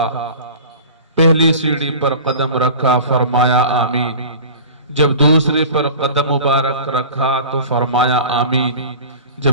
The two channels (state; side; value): inverted; both; correlation -0.38